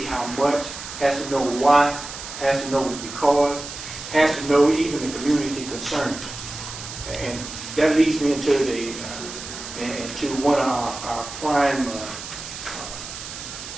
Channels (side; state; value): right; noise; hiss, 10 dB below the sound